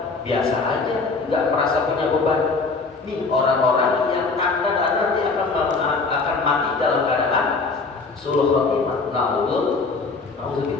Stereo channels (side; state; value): right; quieter; 4.1 dB